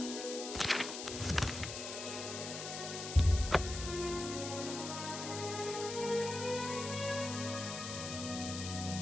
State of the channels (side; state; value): left; noise; hiss, 7 dB below the sound